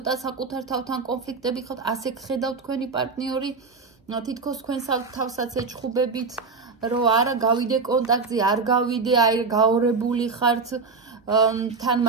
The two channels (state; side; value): quieter; left; 4.5 dB